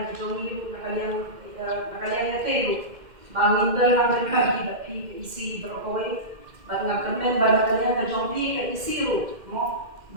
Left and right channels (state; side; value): late; left; 2.1 ms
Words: jomi nakalian ya telu bangin dan ngambil bapi isi berokoi Bagaimana kemen kalian kejompi ke isiru,